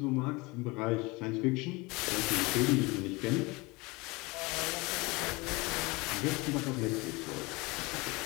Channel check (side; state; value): right; quieter; 24.6 dB